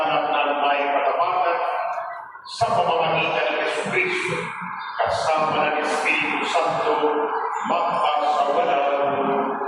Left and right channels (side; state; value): both; identical; correlation 1.00